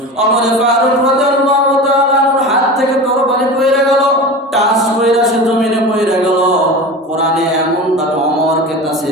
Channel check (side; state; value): both; normal; correlation 0.31